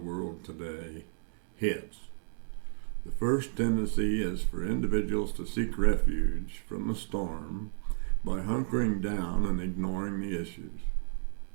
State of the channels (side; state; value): left; silent; 56 dB below the other